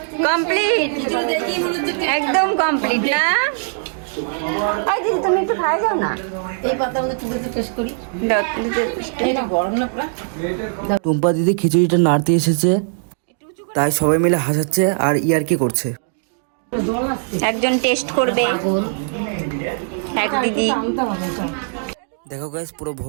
কমপ্লিট, একদম কমপ্লিট না? এই দিদি তুমি একটু খাই যাও না। এই পাতা আমাদের তুলে টেস্ট করি। এটা গরম না পুরা? টুম্পা দিদি খিচুড়িটা নাড়তে এসেছে, তাই সবাই মিলে হাসাচ্ছে আর ইয়ার্কি করছে। একজন টেস্ট করবে, এক দিদি। দেখো গাইস, পুরো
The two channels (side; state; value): left; silent; 65 dB below the other